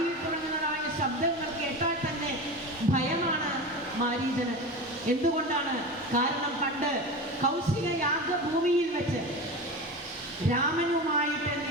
തുടങ്ങുന്നതായ ശബ്ദങ്ങൾ കേട്ടാൽ തന്നെ ഭയമാണ് മാരീചന്. എന്തുകൊണ്ടാണ്? കാരണം പണ്ട് കൗശിക യാഗഭൂമിയിൽ വെച്ച് രാമനുമായിട്ട്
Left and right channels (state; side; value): normal; both; correlation 0.27